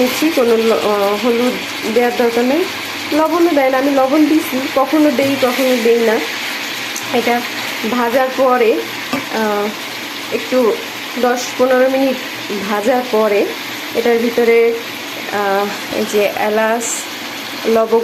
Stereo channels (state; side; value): identical; both; correlation 1.00